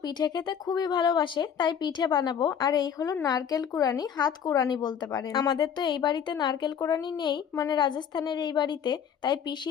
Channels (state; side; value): quieter; right; 8.0 dB